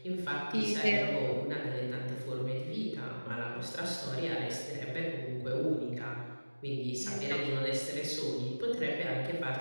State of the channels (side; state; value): both; inverted; correlation -1.00